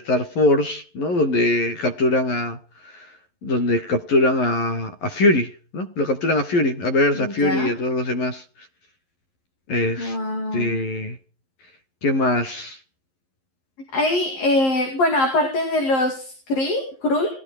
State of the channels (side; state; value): right; late; 11 ms